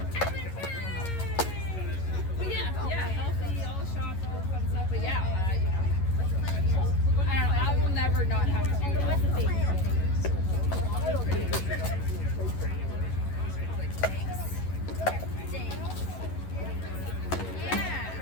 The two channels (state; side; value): late; right; 11 ms